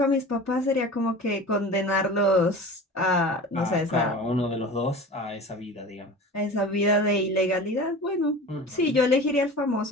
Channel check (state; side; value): normal; both; correlation 0.36